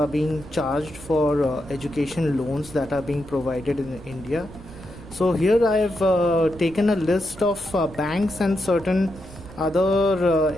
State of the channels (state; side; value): noise; right; rumble, 17 dB below the sound